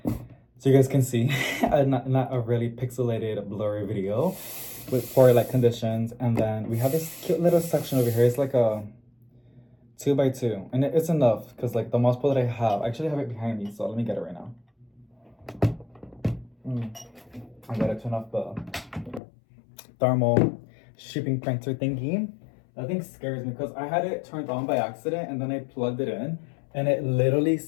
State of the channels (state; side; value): drops out; right; at 19.2 s